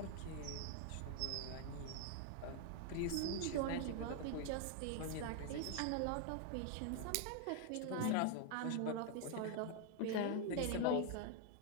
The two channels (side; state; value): both; different; correlation 0.00